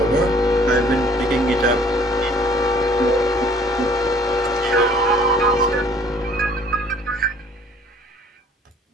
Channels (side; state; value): both; normal; correlation 0.56